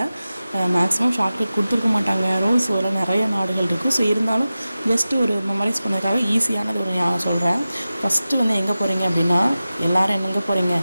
மேக்ஸிமம் ஷார்ட்கட் கொடுத்துருக்க மாட்டாங்க, ரூல்ஸ் வர நிறைய நாடுகள் இருக்கும். ஸோ இருந்தாலும் ஜஸ்ட்டு ஒரு மெமரைஸ் பண்ணதுக்காக ஈஸியானது ஒரு நான் சொல்கிறேன். ஃபஸ்ட்டு வந்து எங்கே போகிறீங்க அப்படின்னா எல்லோரும் எங்கே போகிறீங்க,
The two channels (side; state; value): both; inverted; correlation -0.95